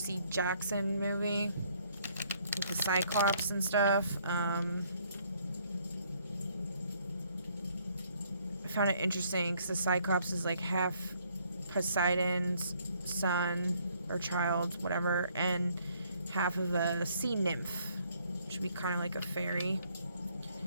Jackson movie with the Cyclops and stuff. I found it interesting because the Cyclops is like half Poseidon's son or child, whatever, and half of a sea nymph, which would be kind of like a fairy.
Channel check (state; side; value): inverted; both; correlation -0.66